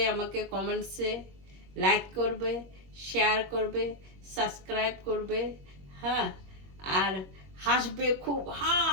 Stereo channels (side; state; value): left; late; 21 ms